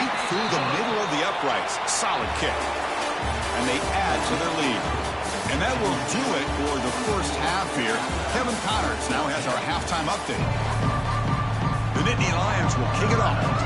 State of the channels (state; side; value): identical; both; correlation 1.00